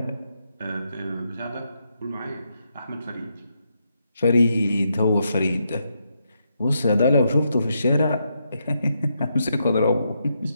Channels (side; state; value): both; inverted; correlation -0.81